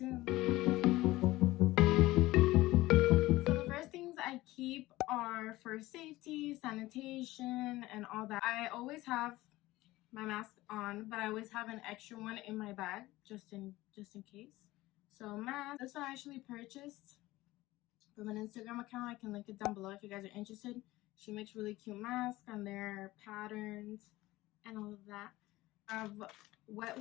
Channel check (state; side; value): quieter; right; 18.1 dB